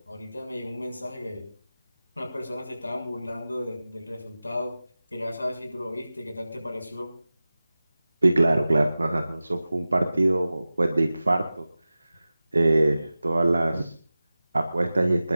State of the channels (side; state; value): both; inverted; correlation -0.96